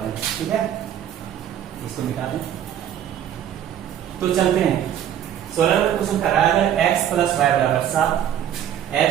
हैं। ठीक है, इसको निकालें। तो चलते हैं 16 नंबर क्वेश्चन कर रहा है अगर x प्लस वाई बराबर 7,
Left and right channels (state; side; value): quieter; left; 10.2 dB